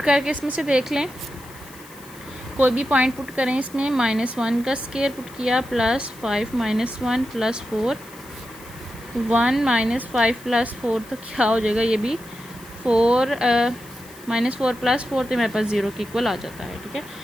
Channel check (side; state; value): left; noise; hiss, 21 dB below the sound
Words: करके इसमें से देख लें, कोई भी पॉइंट पुट करें इसमें। -1 का स्केयर पुट किया +5 - 1 + 4, 1 - 5 + 4 तो क्या हो जाएगा, ये भी 4 -4 + 4 तो मेरे पास 0 के इक्वल आ जाता है। ठीक है,